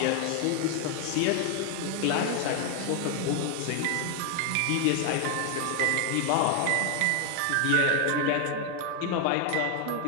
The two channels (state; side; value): different; both; correlation 0.00